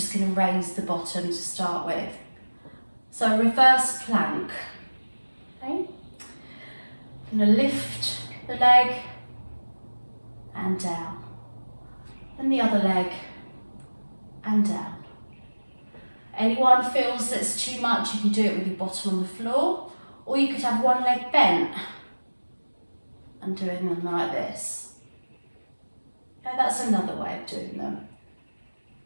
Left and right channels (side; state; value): both; inverted; correlation -1.00